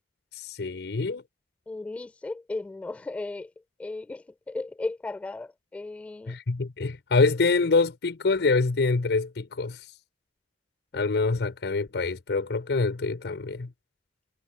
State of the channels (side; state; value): right; quieter; 3.3 dB